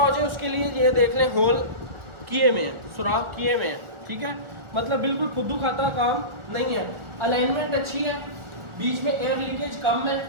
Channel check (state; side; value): late; left; 1.4 ms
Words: जाए उसके लिए ये देख लें, होल किए में है, सुराख किए में है। ठीक है, मतलब बिल्कुल खुद्दू खाता काम नहीं है, अलाइनमेंट अच्छी है, बीच में एयर लीकेज कम है।